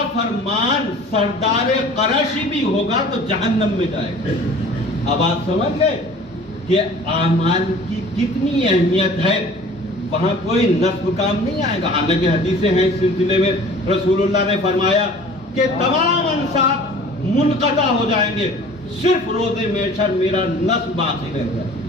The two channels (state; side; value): normal; both; correlation 0.46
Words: سردار قریشی بھی ہوگا تو جہنم میں جائے گا. اب آپ سمجھ گئے کہ اعمال کی کتنی اہمیت ہے. وہاں کوئی نسب کام نہیں آئے گا. حالانکہ حدیثیں ہیں اس سلسلے میں. رسول اللہ نے فرمایا کہ تمام انساب منقطع ہو جائیں گے, صرف روز محشر میرا نسب باقی رہ جائے.